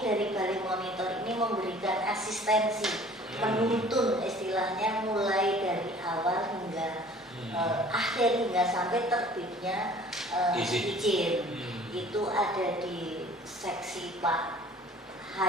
Balai Monitor ini memberikan asistensi, menuntun istilahnya mulai dari awal hingga akhir hingga sampai terbitnya izin. Itu ada di seksi Pak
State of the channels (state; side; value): normal; both; correlation 0.50